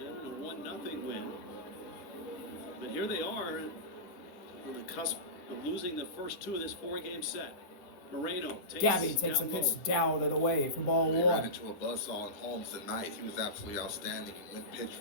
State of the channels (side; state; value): right; late; 10 ms